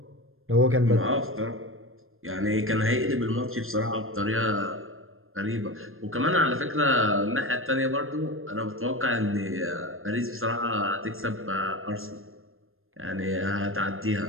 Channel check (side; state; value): left; late; 0.60 ms